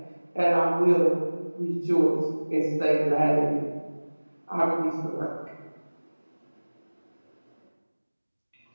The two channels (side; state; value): both; inverted; correlation -1.00